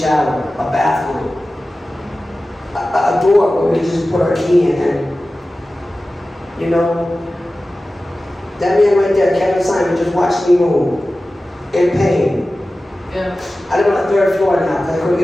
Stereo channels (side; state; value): both; normal; correlation 0.96